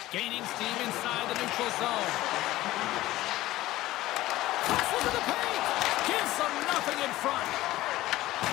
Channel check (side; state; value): right; quieter; 16.5 dB